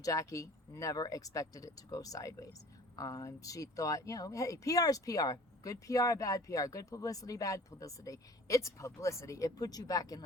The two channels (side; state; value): both; normal; correlation 0.46